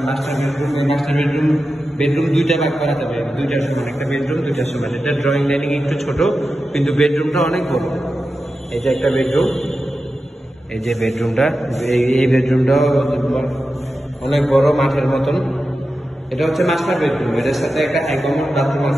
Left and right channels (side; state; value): both; normal; correlation 0.92